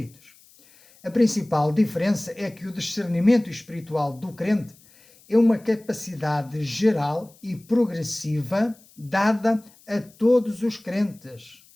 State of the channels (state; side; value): noise; left; hiss, 27 dB below the sound